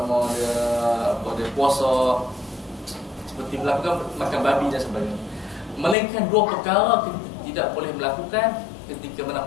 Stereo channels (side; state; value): right; drops out; at 6.0 s